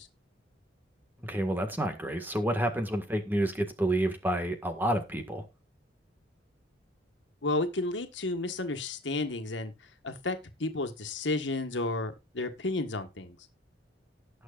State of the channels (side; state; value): both; normal; correlation 0.53